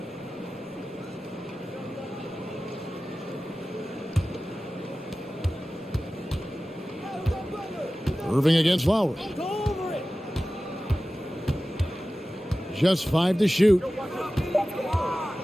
Irving against Lowry. Just 5 to shoot.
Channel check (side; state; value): both; normal; correlation 0.96